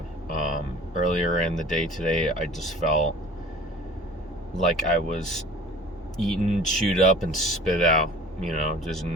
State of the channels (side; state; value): both; normal; correlation 0.45